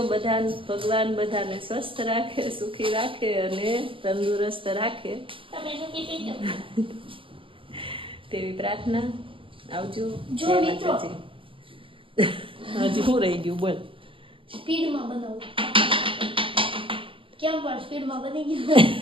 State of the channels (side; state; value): left; late; 0.25 ms